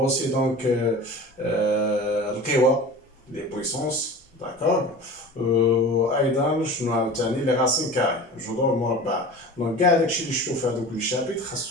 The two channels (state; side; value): normal; both; correlation 0.37